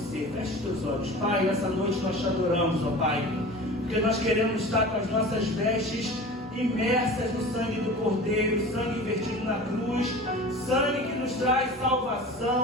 Feche os teus olhos. Pai, nessa noite nós te adoramos, ó Pai, porque nós queremos estar com as nossas vestes imersas no sangue do Cordeiro, sangue vertido na cruz, sangue que nos traz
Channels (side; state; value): both; normal; correlation 0.37